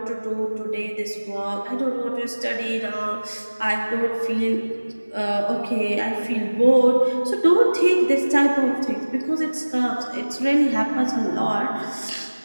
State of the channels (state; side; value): inverted; both; correlation -1.00